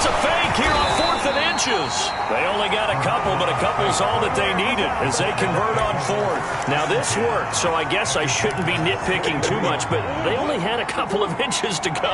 a fake here on 4th and inches. They only got a couple, but a couple's all that they needed as they convert on 4th. Now, this worked, so I guess I shouldn't be nitpicking too much, but they only had a couple of inches to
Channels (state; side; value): identical; both; correlation 1.00